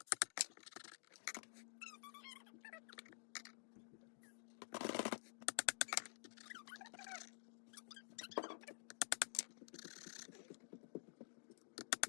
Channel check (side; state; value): right; silent; digital silence